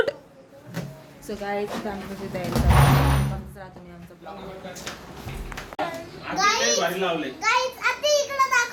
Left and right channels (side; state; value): both; identical; correlation 1.00